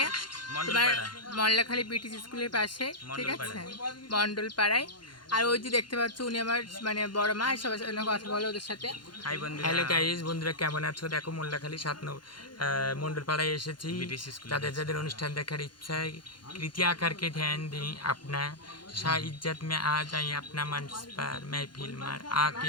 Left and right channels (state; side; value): late; right; 0.71 ms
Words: তোমার মল্লাখালী ব্রিটিশ স্কুলের পাশে, ঠিক আছে, মণ্ডলপাড়ায়। আর ওই যে দেখতে পাচ্ছ উনি আমার মানে বড় মা, সবার সাথে কথা বলো ওদের সাথে। হ্যালো গাইস, বন্ধুরা কেমন আছো? দেখো মল্লাখালী মন্ডলপাড়ায় এসেছি। যাদের যাদের অনুষ্ঠান দেখার ইচ্ছা कृपया करके ध्यान दें। अपना शाह इज्जत में आ जाए अपना मंच पर महफिल में